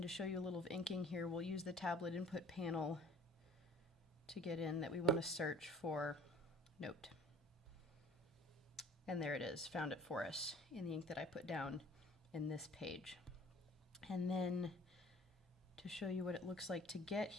to show you a little of inking here, we'll use the tablet input panel to get in that we want to search for note. And there it is, found it for us in the ink that I put down in this page. And then to show you what it looks like to get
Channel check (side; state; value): both; normal; correlation 0.48